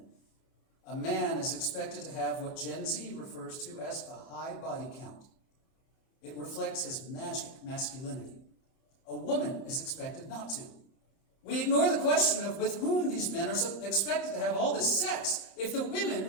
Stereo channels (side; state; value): right; late; 30 ms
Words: A man is expected to have what Gen Z refers to as a high body count. It reflects his magic masculinity. A woman is expected not to. We ignore the question of with whom these men are expected to have all this sex if the women